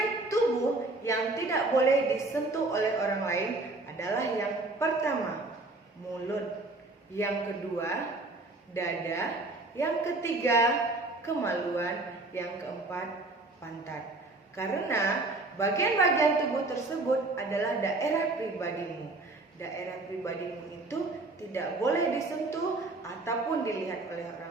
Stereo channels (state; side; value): quieter; left; 3.1 dB